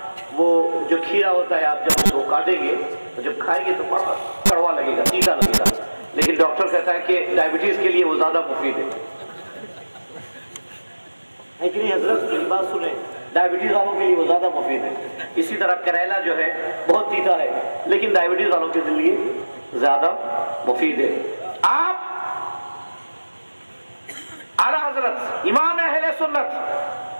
वो जो खीरा होता है आप जब उसको काटेंगे तो जब खाएंगे तो बड़ा कड़वा लगेगा, तीता लगेगा, लेकिन डॉक्टर कहता है कि डायबिटीज के लिए वो ज्यादा मुफीद है कि नहीं हजरत? बात सुने, डायबिटीज वालों के लिए वो ज्यादा मुफीद है। इसी तरह करेला जो है बहुत तीता है लेकिन डायबिटीज वालों के लिए ज्यादा मुफीद है। आप आला हजरत इमाम अहले सुन्नत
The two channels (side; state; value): both; inverted; correlation -1.00